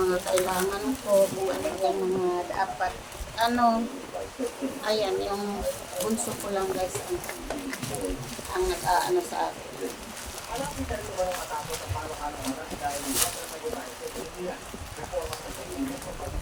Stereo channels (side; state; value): both; identical; correlation 1.00